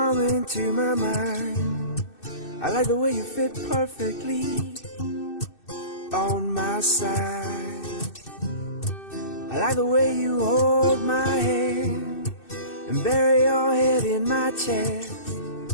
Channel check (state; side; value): late; right; 2.6 ms